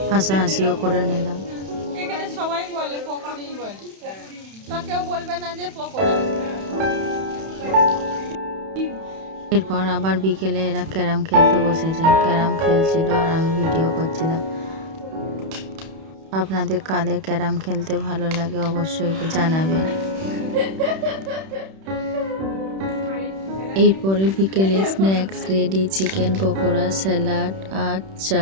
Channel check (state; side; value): late; left; 31 ms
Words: হাসাহাসিও করে নিলাম। এখানে সবাই বলে পকোড়ি বলে, তো কেউ বলবে না যে পকোড়া। এরপর আবার বিকেলে এরা ক্যারাম খেলতে বসেছে। ক্যারাম খেলছিল আর আমি ভিডিও করছিলাম। আপনাদের কাদের ক্যারাম খেলতে ভালো লাগে অবশ্যই জানাবেন। এরপরে বিকেলে snacks ready, chicken pakora, salad আর